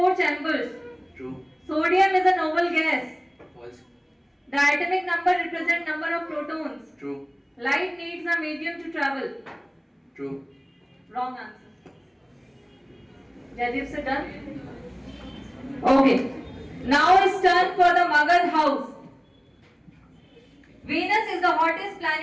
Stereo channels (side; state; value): both; identical; correlation 1.00